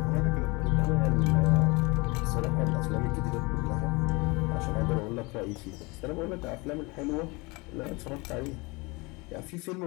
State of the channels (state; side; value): quieter; right; 26.2 dB